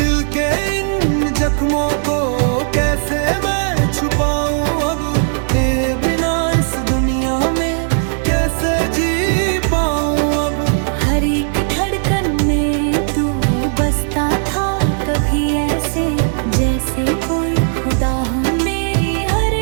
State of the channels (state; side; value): silent; left; 68 dB below the other